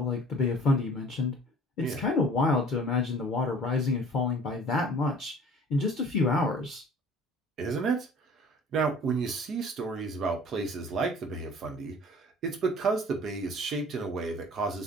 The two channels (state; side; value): normal; both; correlation 0.48